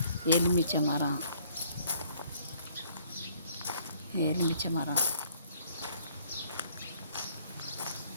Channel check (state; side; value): inverted; both; correlation -0.62